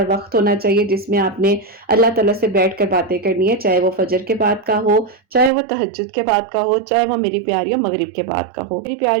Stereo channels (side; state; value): left; drops out; at 5.5 s